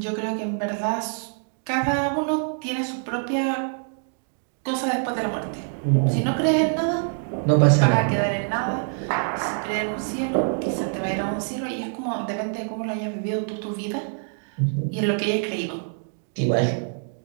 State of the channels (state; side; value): silent; left; 59 dB below the other